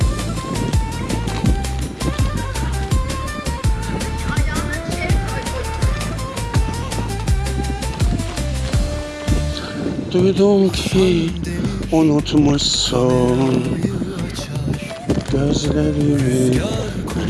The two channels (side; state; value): both; identical; correlation 1.00